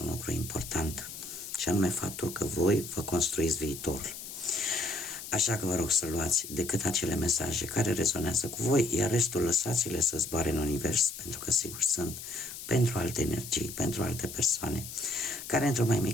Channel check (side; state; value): left; noise; hiss, 10 dB below the sound